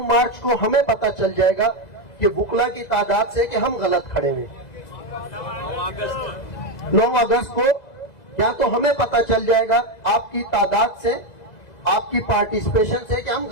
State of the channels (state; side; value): late; right; 2.0 ms